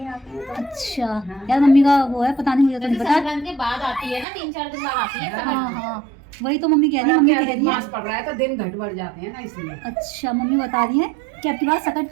आते हैं। अच्छा हाँ। यार मम्मी का वो है, पता नहीं, मुझे तो नहीं पता। संक्रांत के बाद आती है ना, 3-4 दिन बाद आती है। हाँ हाँ वही तो मम्मी कह रही है। मम्मी कह रही है मास पड़ रहा है तो दिन घट बढ़ जाते हैं ना, इसलिए। अच्छा मम्मी बता रही है कि अब की बार सकट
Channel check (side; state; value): left; drops out; at 4.2 s